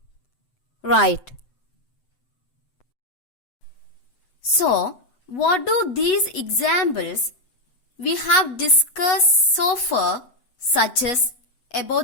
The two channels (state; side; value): late; right; 8.2 ms